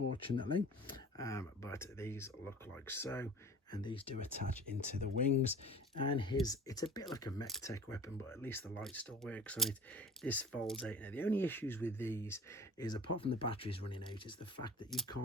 but these look like so. And these do attach into the wings, and it's a bit like a mech tech weapon, but at least the light still works on it. This folds out. Now, the only issues with these is, apart from the batteries running out, is the fact that you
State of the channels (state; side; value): normal; both; correlation 0.42